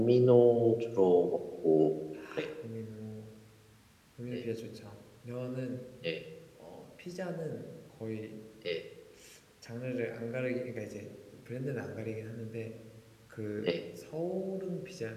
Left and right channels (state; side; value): identical; both; correlation 1.00